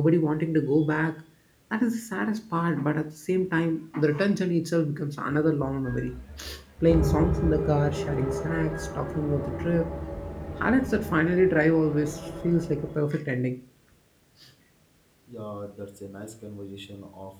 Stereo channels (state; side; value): identical; both; correlation 1.00